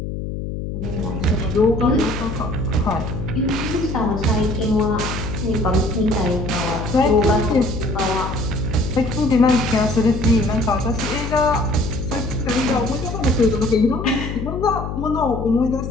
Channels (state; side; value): noise; left; hum, 5 dB below the sound